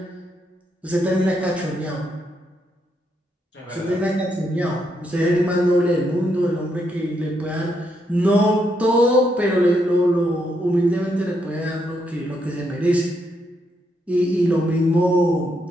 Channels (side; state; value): both; normal; correlation 0.78